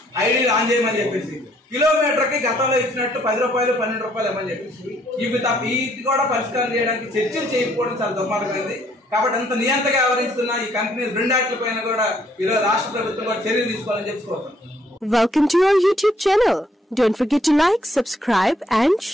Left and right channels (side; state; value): both; normal; correlation 0.66